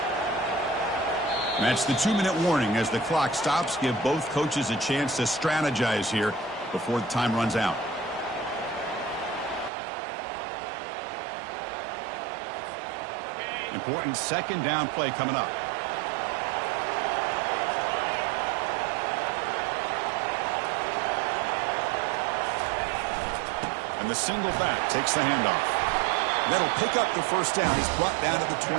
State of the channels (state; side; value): drops out; left; at 9.7 s